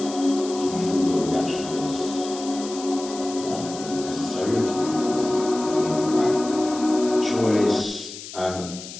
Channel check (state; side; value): noise; left; hiss, 13 dB below the sound